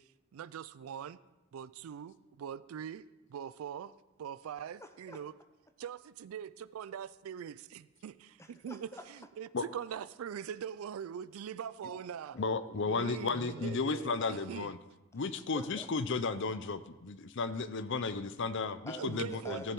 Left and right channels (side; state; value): both; normal; correlation -0.03